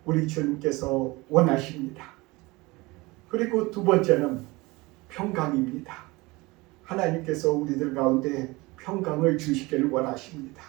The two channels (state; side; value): quieter; left; 22.9 dB